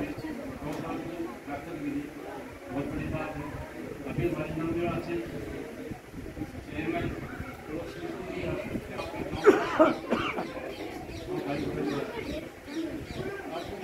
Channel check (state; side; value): identical; both; correlation 1.00